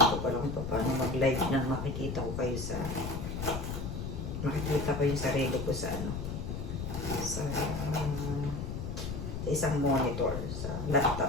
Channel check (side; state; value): left; noise; rumble, 5 dB below the sound